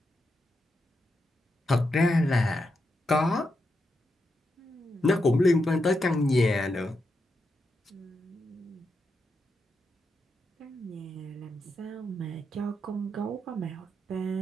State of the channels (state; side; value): normal; both; correlation 0.85